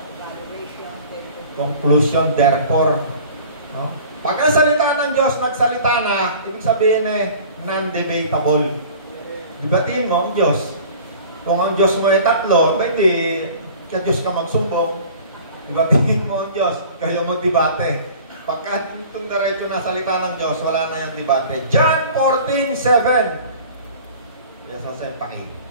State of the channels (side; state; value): both; inverted; correlation -0.45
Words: Conclusion, therefore. No? Pag ang salita ng Diyos nagsalita na, ibig sabihin eh, non-debatable. Dibatiin mo ang Diyos. Kung ang Diyos mo ay tatlo, pwede kaya Diyos ka magsumbong. Dibatiin mo ang Diyos, kayo magdebate. Pagka itong diretso na salita ng Diyos, wala na yung debate. John 14:7. Yes, Jose, paki.